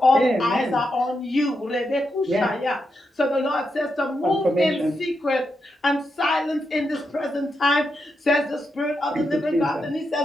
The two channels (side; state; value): both; normal; correlation 0.84